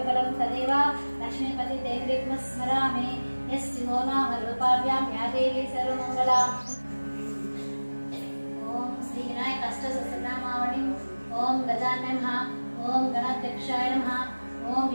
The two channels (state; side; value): inverted; both; correlation -1.00